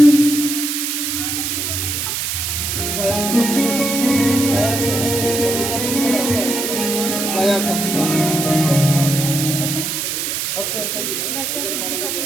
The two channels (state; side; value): noise; right; hiss, 2 dB below the sound